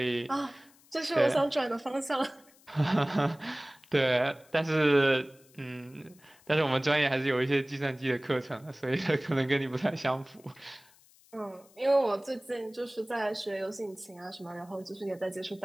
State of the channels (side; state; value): left; noise; hiss, 28 dB below the sound